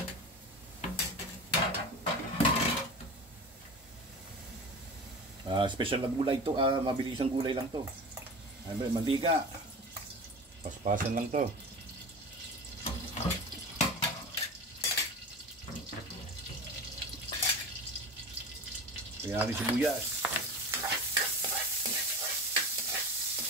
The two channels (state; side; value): normal; both; correlation 0.32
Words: Special na gulay to, mabilisang gulay lang to. Mantika. Paspasan lang to. Kaya natin sibuyas.